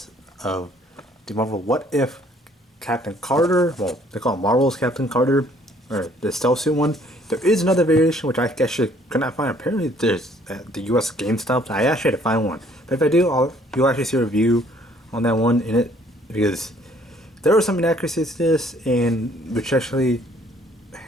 of the Marvel What If Captain Carter. Well, they call it Marvel's Captain Carter, or the Stealth Suit one. There is another variation which I actually could not find. Apparently, there's at the US GameStop. I actually had to find one, but if I do, you'll actually see a review on that one in it because there are some inaccuracies to this, and which actually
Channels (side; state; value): both; normal; correlation 0.61